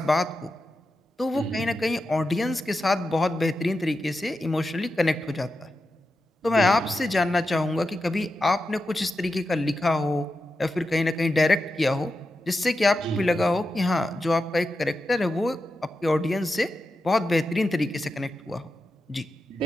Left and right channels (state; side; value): normal; both; correlation 0.89